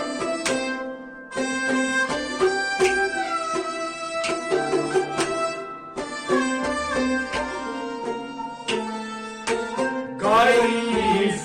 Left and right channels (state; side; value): identical; both; correlation 1.00